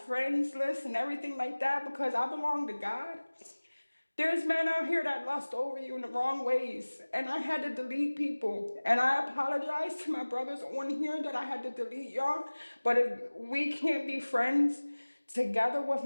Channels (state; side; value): inverted; both; correlation -1.00